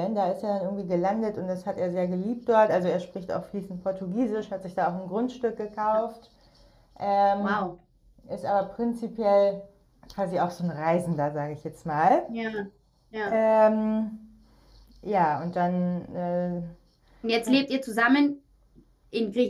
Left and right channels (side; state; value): both; identical; correlation 1.00